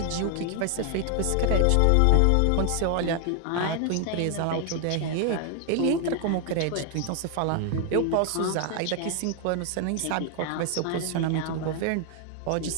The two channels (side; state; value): both; different; correlation 0.00